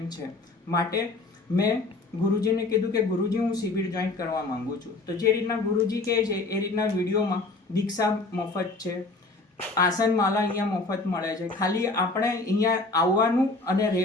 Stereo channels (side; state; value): right; quieter; 3.3 dB